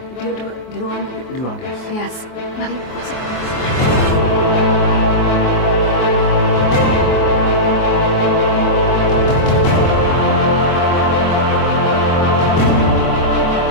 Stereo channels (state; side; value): late; right; 24 ms